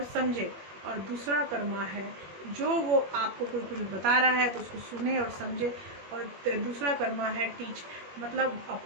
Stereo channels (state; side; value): late; left; 21 ms